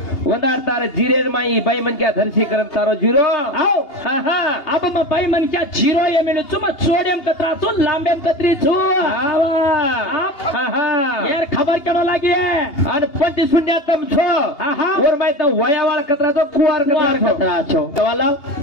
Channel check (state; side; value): late; right; 2.8 ms